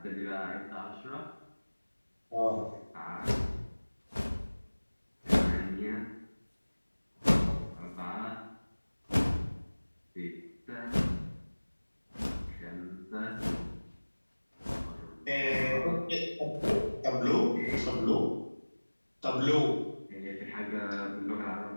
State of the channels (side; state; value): both; inverted; correlation -1.00